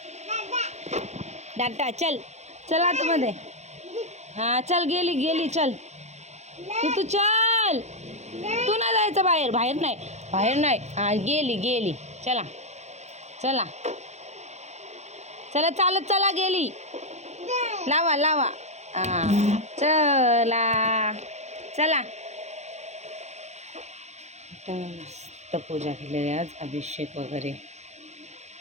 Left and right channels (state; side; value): late; left; 0.33 ms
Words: डाटा चल चल आतमध्ये. हां चल, गेली गेली, चल तू चल. तू नाही जायचं बाहेर, बाहेर नाही, बाहेर नाही. हां गेली गेली, चला चला चला, चालत चला, गेली. लावा लावा. हां चला चला. मस्त पूजा केलेली आज, अभिषेक वगैरे.